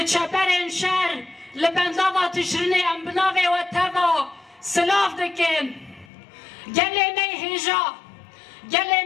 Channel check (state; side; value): drops out; right; at 6.1 s